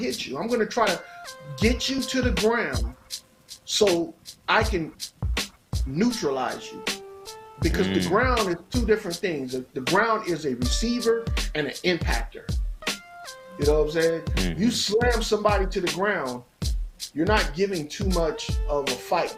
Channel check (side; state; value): both; identical; correlation 1.00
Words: you. I'm going to try to get you to the ground so I can neutralize you. Because the ground is two different things. The ground is a receiver and an impactor. You know what I'm saying? You slam somebody to the ground, you're not giving too much of a